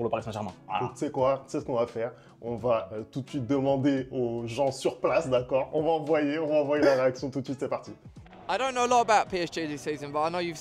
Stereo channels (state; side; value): identical; both; correlation 1.00